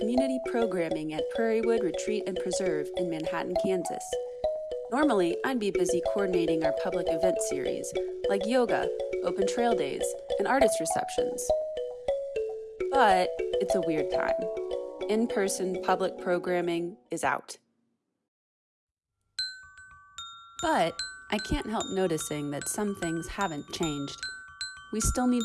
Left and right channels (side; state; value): both; identical; correlation 1.00